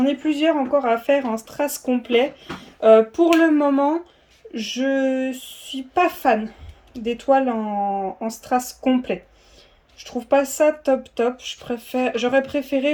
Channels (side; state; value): both; identical; correlation 1.00